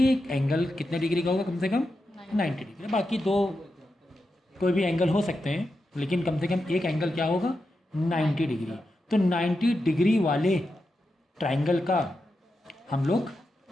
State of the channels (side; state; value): both; normal; correlation 0.88